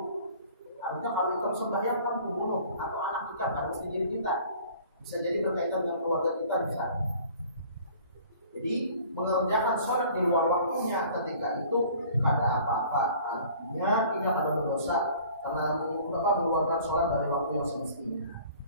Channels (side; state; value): both; inverted; correlation -0.50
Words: artinya kalau kita sembahyang kan membunuh atau anak kita kan mesti jadi kita. Bisa jadi berkaitan dengan keluarga kita bisa. Jadi mengerjakan sholat di luar waktunya ketika itu ada apa-apa, artinya tidak ada dosa karena mengeluarkan sholat dari waktu yang semestinya.